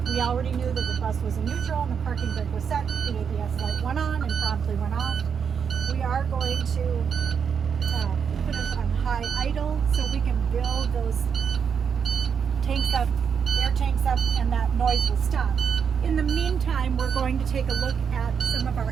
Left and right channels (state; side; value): quieter; left; 6.9 dB